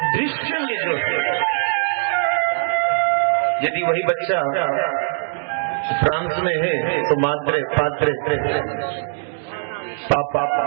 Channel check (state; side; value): silent; left; digital silence